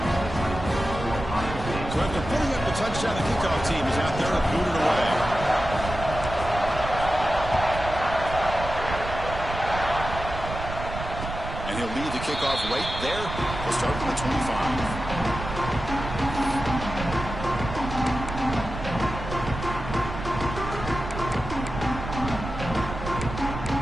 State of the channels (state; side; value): noise; right; rumble, 8 dB below the sound